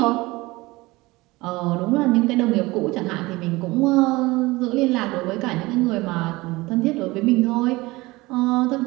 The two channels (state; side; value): quieter; left; 21.2 dB